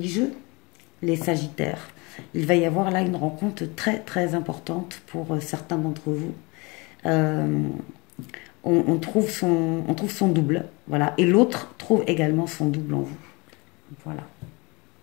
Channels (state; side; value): quieter; right; 26.9 dB